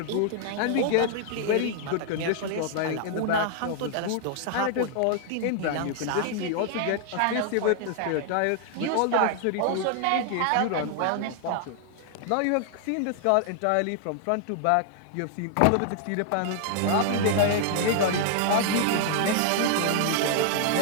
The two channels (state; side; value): different; both; correlation 0.00